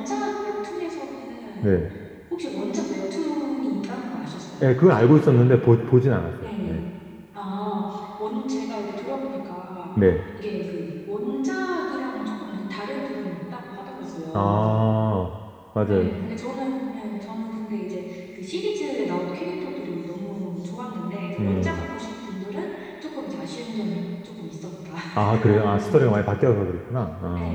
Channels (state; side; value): identical; both; correlation 1.00